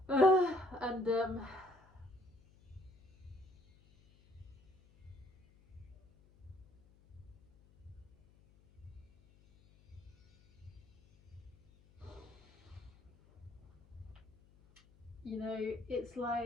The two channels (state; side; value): noise; left; hum, 27 dB below the sound